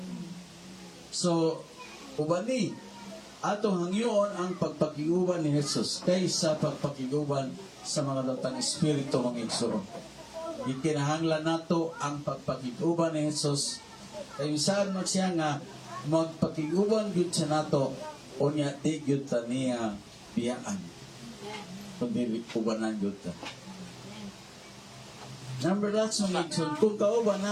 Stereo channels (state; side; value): identical; both; correlation 1.00